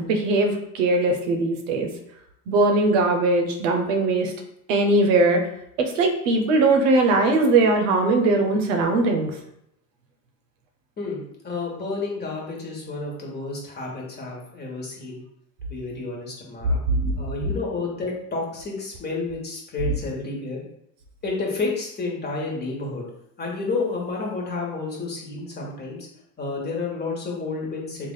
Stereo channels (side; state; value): both; normal; correlation 0.20